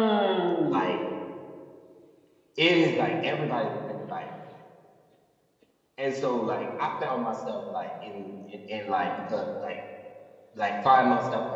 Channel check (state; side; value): identical; both; correlation 1.00